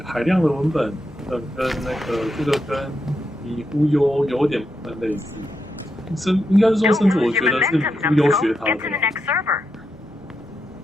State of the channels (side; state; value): both; normal; correlation 0.84